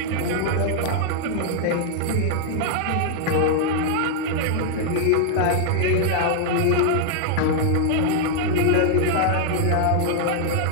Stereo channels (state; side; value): different; both; correlation 0.00